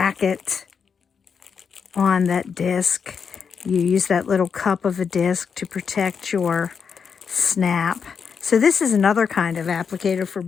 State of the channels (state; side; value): quieter; right; 6.3 dB